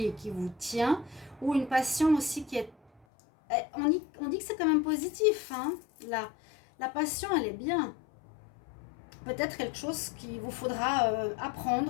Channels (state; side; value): drops out; right; at 3.1 s